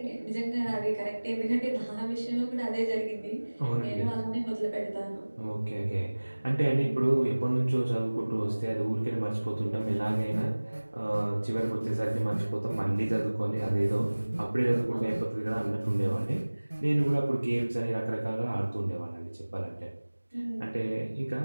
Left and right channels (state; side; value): inverted; both; correlation -1.00